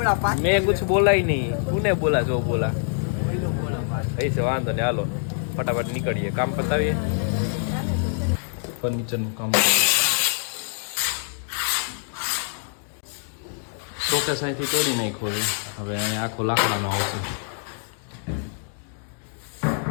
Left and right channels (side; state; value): right; silent; 62 dB below the other